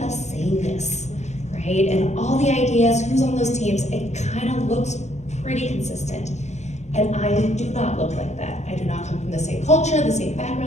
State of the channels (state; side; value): late; right; 0.33 ms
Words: of sameness, right? And all the ideas, who's on those teams, it kind of looks pretty consistent. And I do not look like that. I do not come from the same culture, the same